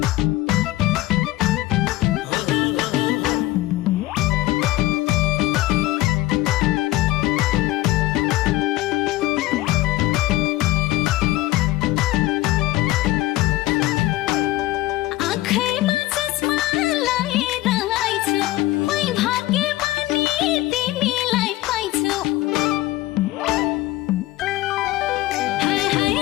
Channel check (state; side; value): quieter; right; 16.9 dB